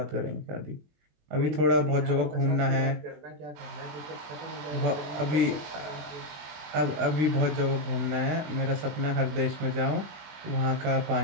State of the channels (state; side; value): late; left; 21 ms